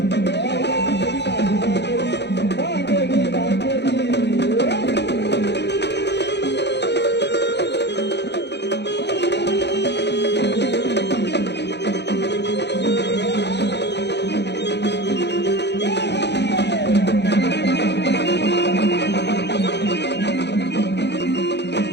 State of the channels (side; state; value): right; late; 0.50 ms